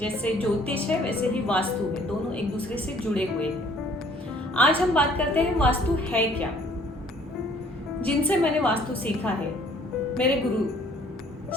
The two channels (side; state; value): both; normal; correlation 0.58